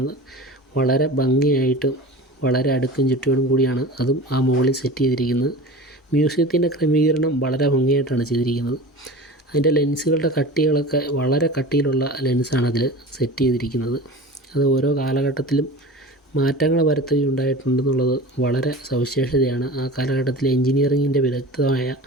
വളരെ ഭംഗിയായിട്ടും വളരെ അടുക്കും ചുറ്റോടും കൂടിയാണ് അതും ആ മുകളിൽ സെറ്റ് ചെയ്തിരിക്കുന്നത്. മ്യൂസിയത്തിൻ്റെ ക്രമീകരണം വളരെ ഭംഗിയായിട്ടാണ് ചെയ്തിരിക്കുന്നത്. അതിൻ്റെ ലെൻസുകളുടെ കട്ടികളൊക്കെ വളരെ കട്ടിയിലുള്ള ലെൻസാണ് അതിൽ സെറ്റ് ചെയ്തിരിക്കുന്നത്. അത് ഓരോ കാലഘട്ടത്തിലും മാറ്റങ്ങൾ വരുത്തുകയുണ്ടായിട്ടുണ്ടെന്നുള്ളത് വളരെ സവിശേഷതയാണ്. ആ കാലഘട്ടത്തിലെ എൻജിനീയറിങ്ങിൻ്റെ വിദഗ്ധമായ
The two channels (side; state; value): both; normal; correlation 0.36